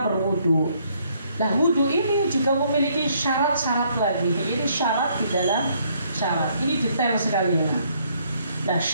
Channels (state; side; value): inverted; both; correlation -0.68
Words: berwudu. Nah, wudu ini juga memiliki syarat-syarat lagi. Ini syarat di dalam syarat. Ini detail sekali. Nah,